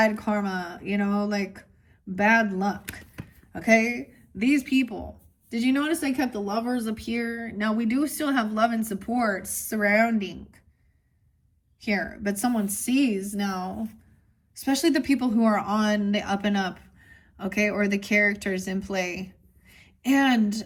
karma, you know, like bad luck. Okay? These people. Did you notice I kept the Lovers up here? Now, we do still have love and support surrounding here, but someone sees now, especially the people who are on the up and up, okay, or the characters in play. And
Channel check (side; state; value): both; identical; correlation 1.00